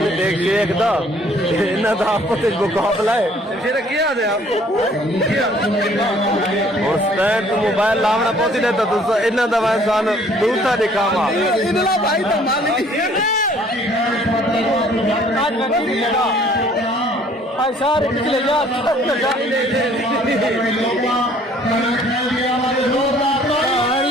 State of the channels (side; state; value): both; normal; correlation 0.58